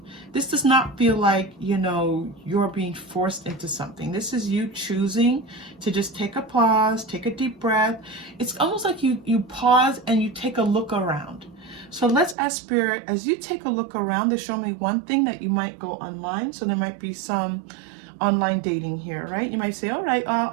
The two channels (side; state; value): left; drops out; at 12.4 s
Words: This does not feel like, you know, you're being forced into something. This is you choosing to just take a pause, take a deep breath. It's almost like you pause and you take a look around. So let's ask Spirit, as you take a look around, to show me one thing that you might go online. So there might be some online dating here, right? You might say, all right, I'll